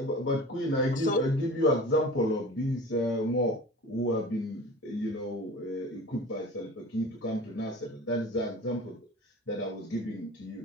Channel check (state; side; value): normal; both; correlation 0.39